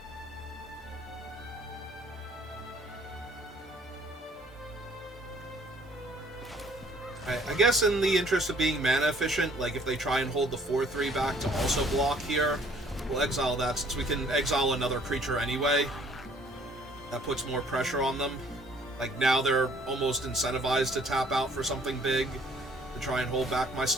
I guess in the interest of being mana efficient, like if they try and hold the 4/3 back to also block here, we'll exile that since we can exile another creature anyway. That puts more pressure on them. Like now they're almost incentivized to tap out for something big to try and hold back my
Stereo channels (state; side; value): normal; both; correlation 0.59